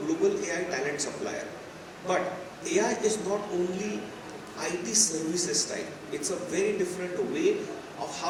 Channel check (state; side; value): identical; both; correlation 1.00